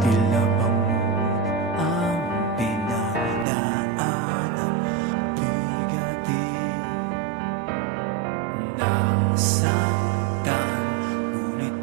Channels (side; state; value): left; drops out; at 3.5 s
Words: tila bangod ang pinagdaanan, bigatin, nasaktan, ngunit